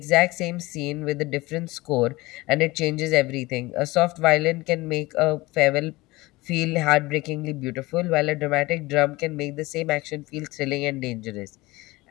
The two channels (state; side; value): quieter; right; 20.9 dB